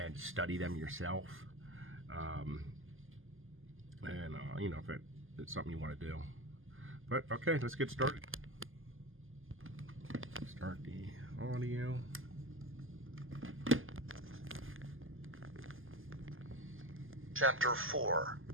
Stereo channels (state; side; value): late; left; 0.59 ms